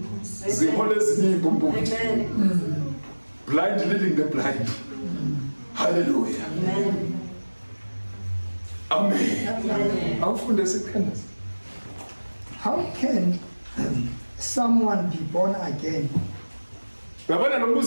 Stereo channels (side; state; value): both; inverted; correlation -1.00